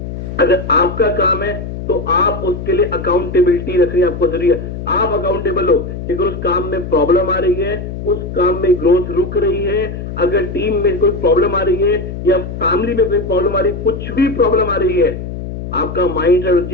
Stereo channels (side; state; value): left; noise; hum, 8 dB below the sound